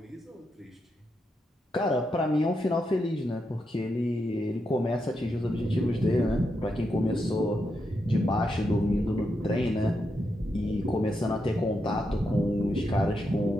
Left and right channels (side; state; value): both; normal; correlation 0.84